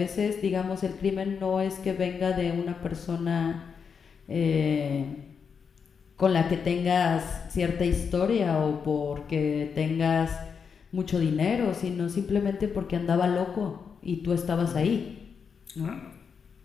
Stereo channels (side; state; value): right; quieter; 6.3 dB